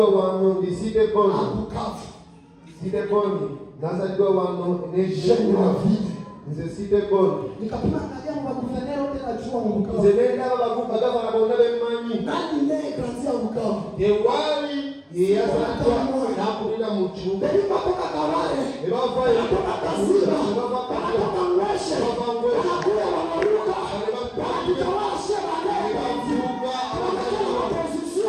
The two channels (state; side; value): identical; both; correlation 1.00